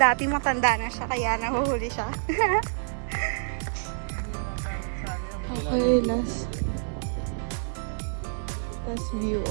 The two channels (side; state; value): left; silent; 60 dB below the other